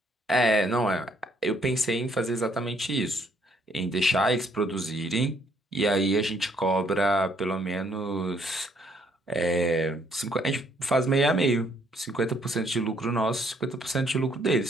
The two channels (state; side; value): normal; both; correlation 0.67